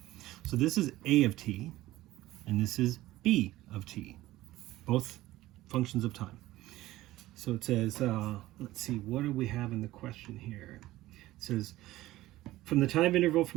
So this is A of t, and this is B of t, both functions of time. So it says, let's see, what do we have in the question here? It says, from the time interval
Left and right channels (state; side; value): quieter; left; 16.5 dB